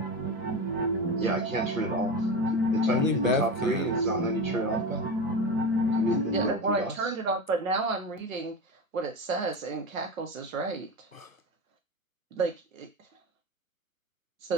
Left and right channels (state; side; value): late; left; 1.1 ms